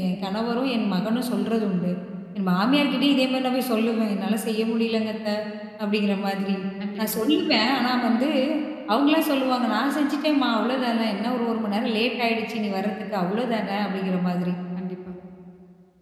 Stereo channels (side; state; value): both; identical; correlation 1.00